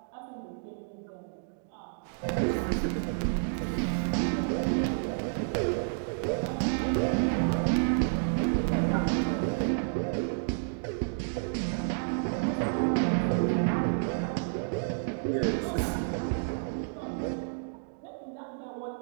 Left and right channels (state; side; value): silent; left; digital silence